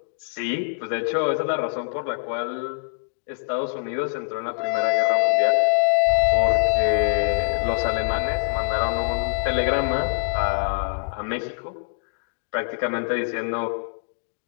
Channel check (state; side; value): silent; right; digital silence